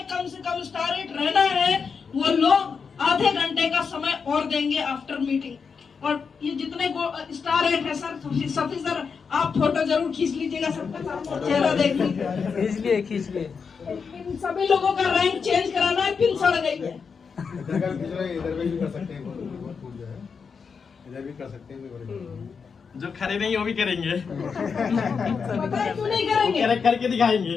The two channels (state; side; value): quieter; right; 5.7 dB